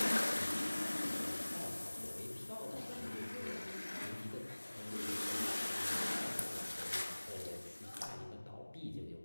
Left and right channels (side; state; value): both; inverted; correlation -1.00